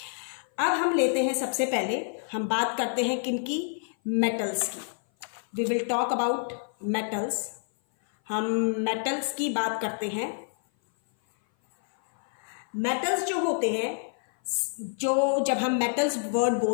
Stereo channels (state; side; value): silent; right; 57 dB below the other